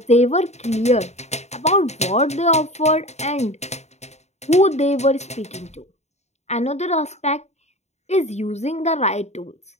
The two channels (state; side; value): late; right; 0.32 ms